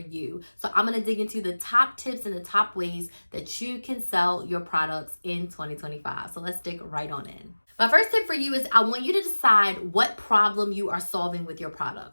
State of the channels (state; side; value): inverted; both; correlation -1.00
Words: So I'm going to dig into the top tips and the top ways that you can sell your products in 2025. So let's dig right on in. My first tip for you is I want you to decide what problem you are solving with your